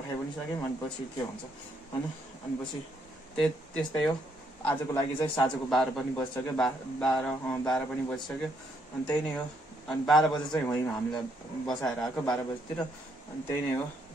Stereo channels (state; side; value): normal; both; correlation 0.72